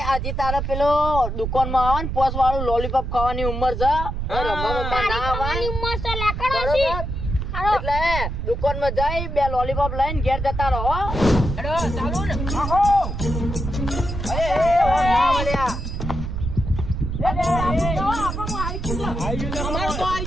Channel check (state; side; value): noise; right; rumble, 4 dB below the sound